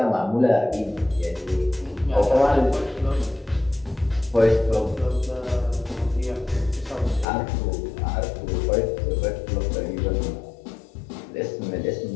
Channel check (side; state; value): right; drops out; at 7.2 s